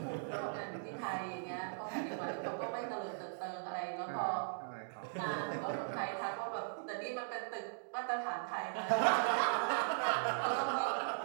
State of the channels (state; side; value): silent; left; digital silence